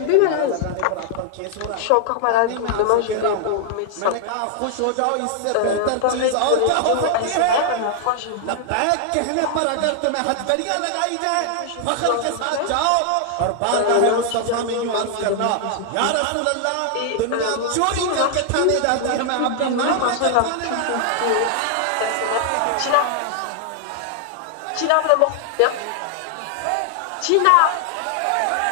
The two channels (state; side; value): different; both; correlation 0.00